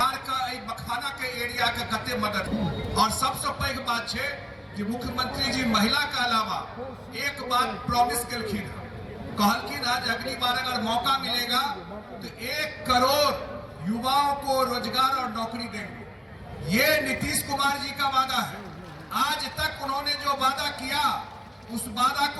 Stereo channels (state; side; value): identical; both; correlation 1.00